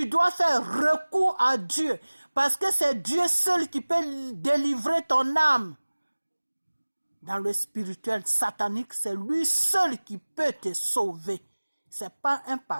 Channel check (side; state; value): both; inverted; correlation -1.00